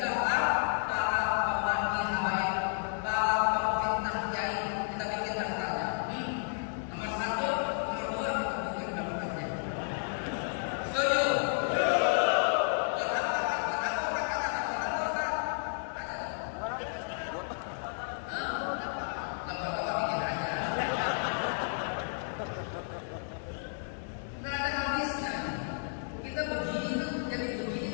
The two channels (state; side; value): silent; right; 56 dB below the other